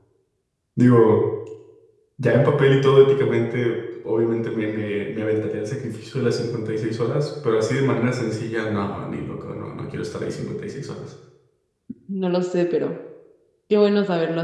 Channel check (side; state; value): both; identical; correlation 1.00